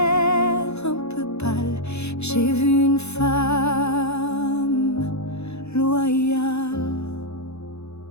un peu pâle, j'ai vu une femme loyale.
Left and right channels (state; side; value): late; right; 0.80 ms